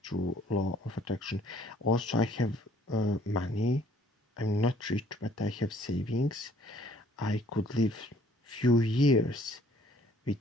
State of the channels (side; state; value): both; normal; correlation 0.60